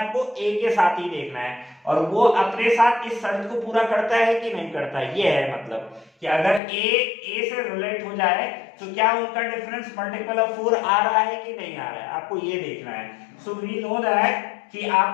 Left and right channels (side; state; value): right; drops out; at 6.6 s